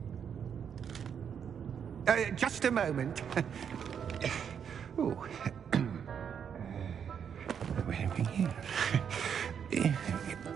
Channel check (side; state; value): left; quieter; 7.7 dB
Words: Just a moment. Oh. Wait a minute here.